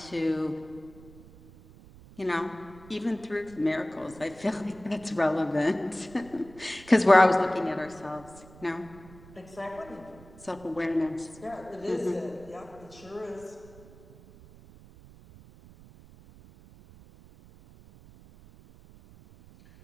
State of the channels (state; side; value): noise; right; rumble, 21 dB below the sound